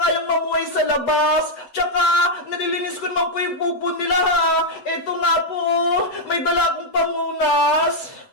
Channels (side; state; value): right; late; 8.0 ms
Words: mamuhay sa labas. Tsaka, nalilinis ko naman po yung pupo nila, ha? Eto nga po, may dala akong pamunas.